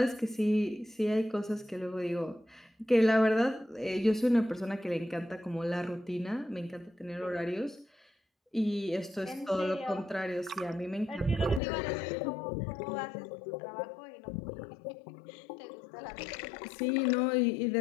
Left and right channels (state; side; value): drops out; right; at 11.6 s